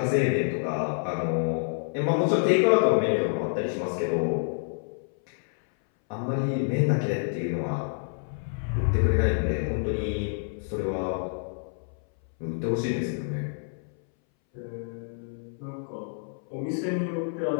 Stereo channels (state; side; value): silent; right; 60 dB below the other